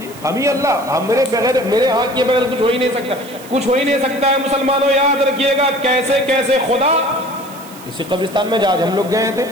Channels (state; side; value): noise; right; hiss, 20 dB below the sound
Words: ہم ہی اللہ, ہم میرے ہاتھ کے بغیر کچھ ہو ہی نہیں سکتا, کچھ ہو ہی نہیں سکتا ہے. مسلمانوں یاد رکھیے گا کیسے کیسے خدا اسی قبرستان میں آج ہم لوگ گئے تھے